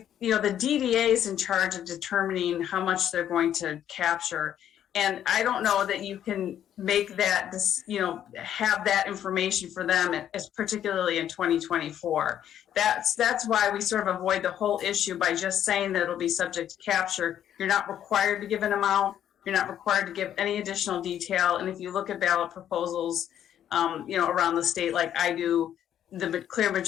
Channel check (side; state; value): right; quieter; 10.4 dB